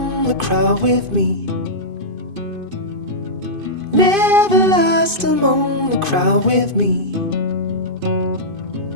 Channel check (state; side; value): late; left; 2.5 ms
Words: the crowd with me. Never lost among the crowd with me.